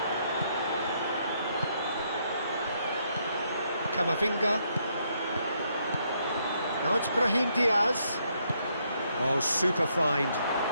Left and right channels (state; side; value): inverted; both; correlation -0.74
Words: Camavinga. Now it's Brahim Diaz. Oh, super find.